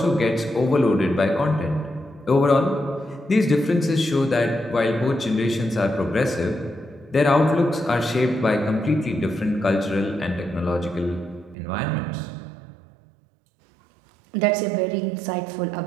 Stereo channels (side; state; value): left; drops out; at 11.6 s